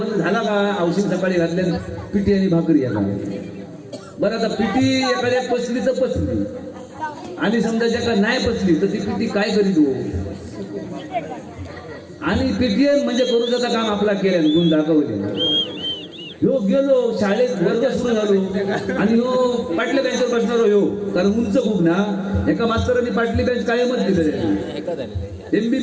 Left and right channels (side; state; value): both; identical; correlation 1.00